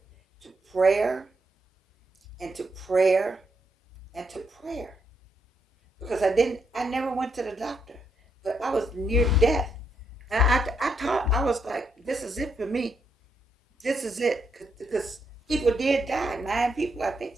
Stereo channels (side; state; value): both; normal; correlation 0.79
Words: to prayer and to prayer and to prayer. Because I never went to the doctor, but I was near death. And I thought, I was like, this is it for me. This is it. Because people did die. 9 people, I think